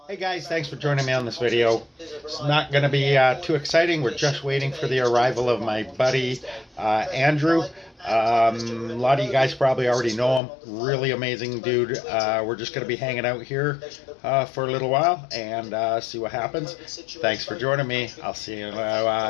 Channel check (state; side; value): drops out; right; at 10.4 s